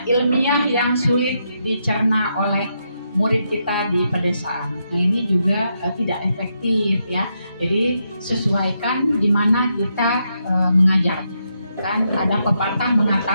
ilmiah yang sulit dicerna oleh murid kita di pedesaan. Nah, ini juga tidak efektif ya. Jadi sesuaikan di mana kita mengajar. Kan ada pepatah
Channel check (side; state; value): both; inverted; correlation -0.81